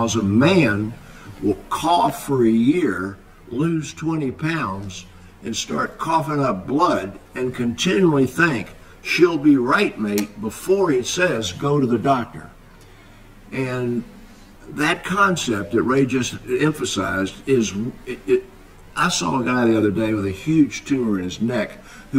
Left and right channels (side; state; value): both; identical; correlation 1.00